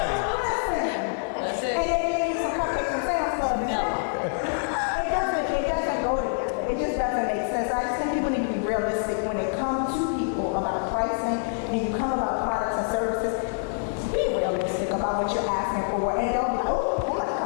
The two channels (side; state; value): right; silent; digital silence